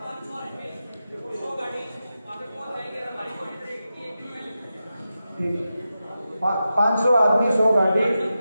500 आदमी 100 गाड़ी।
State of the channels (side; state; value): both; inverted; correlation -0.90